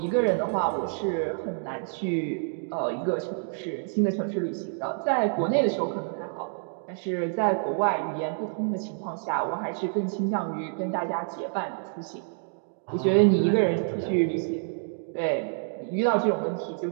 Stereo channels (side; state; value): left; silent; 60 dB below the other